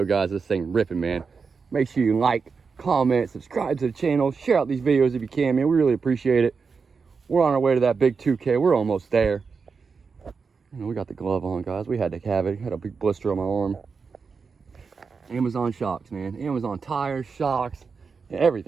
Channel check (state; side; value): quieter; left; 5.2 dB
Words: guys. This thing ripping, man. Make sure you like, comment, subscribe to the channel, share out these videos if you can, man. We really appreciate it. We're on our way to that big 2K. We're almost there. You know, we got the glove on, guys. We had to have it. Had a big blister on my arm. Amazon shocks, man. Amazon tires, shocks,